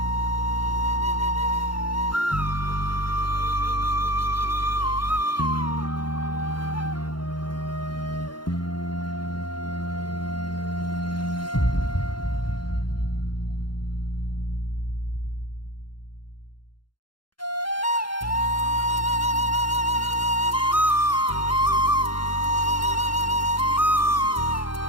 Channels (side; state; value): right; late; 0.72 ms